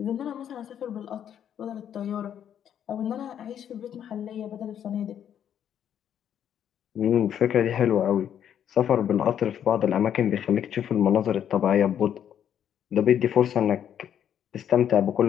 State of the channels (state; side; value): quieter; right; 9.4 dB